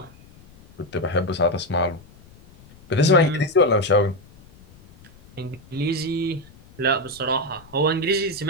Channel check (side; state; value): left; noise; rumble, 25 dB below the sound